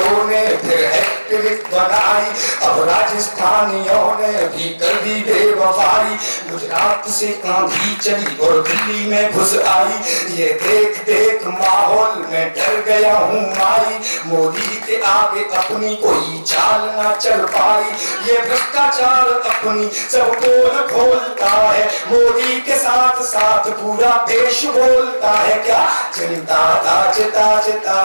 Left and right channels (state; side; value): inverted; both; correlation -1.00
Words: ने फिर हैट्रिक बनाई, अब राजस्थानियों ने भी कर दी बेवफाई। गुजरात से आंधी चली और दिल्ली में घुस आई, ये देख देख माहौल में डर गया हूँ माई। मोदी के आगे अपनी कोई चाल ना चल पाई, ये भ्रष्टाचार अपनी सब पोल खोलता है। मोदी के साथ साथ पूरा देश बोलता है क्या, चिंता ताज ताज ता